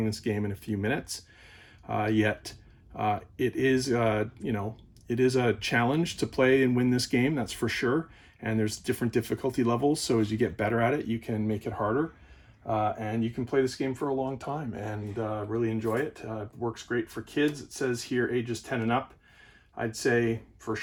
this game in a few minutes. Yet it is, it is a challenge to play and win this game, that's for sure. And there's different difficulty levels, so as you get better at it, you can make it harder. And you can play this game for a long time and really enjoy it. Works great for kids. It says here ages 10 and up. I'd say for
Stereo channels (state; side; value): identical; both; correlation 1.00